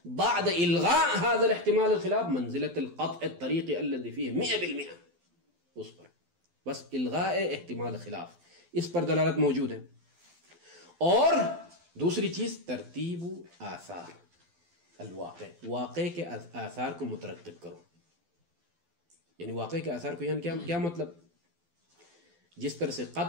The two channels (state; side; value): late; left; 12 ms